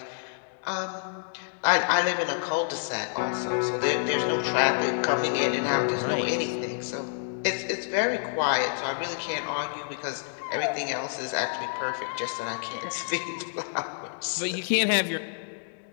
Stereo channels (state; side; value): silent; right; digital silence